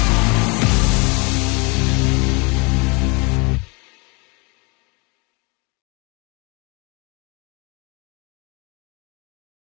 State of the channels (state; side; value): quieter; right; 29.9 dB